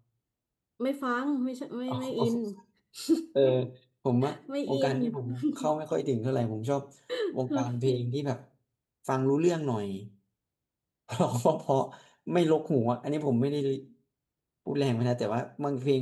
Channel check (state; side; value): identical; both; correlation 1.00